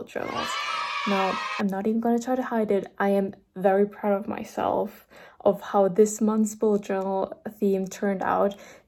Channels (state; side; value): identical; both; correlation 1.00